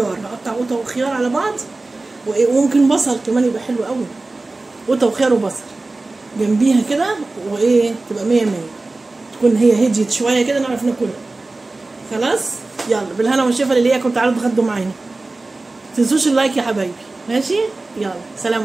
هقطع قوطة وخيار على بعض وممكن بصل كمان يبقى حلو قوي. قوطة وخيار وبصل جنبيها كده وايه تبقى 100 100. تكون هي هديت شوية كده نعرف ناكلها. خلاص يلا بالهنا والشفا اللي ليكم. تعالوا اتغدوا معانا، متنسوش اللايك يا حبايبي. ماشي، يلا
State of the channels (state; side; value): quieter; left; 3.2 dB